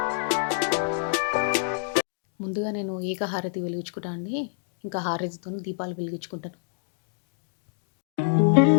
ముందుగా నేను ఏకహారతి వెలిగించుకుంటాను అండి. ఇంకా హారతితో దీపాలు వెలిగించుకుంటాను.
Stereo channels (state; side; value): silent; right; digital silence